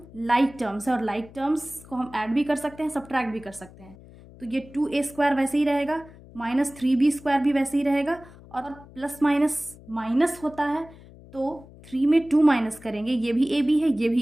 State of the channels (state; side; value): noise; left; hum, 21 dB below the sound